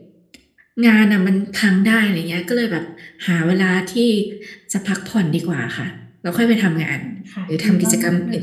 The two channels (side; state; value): both; identical; correlation 1.00